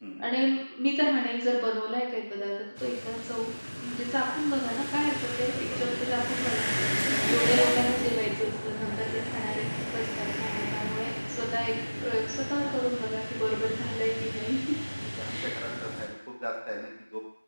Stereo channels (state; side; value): inverted; both; correlation -1.00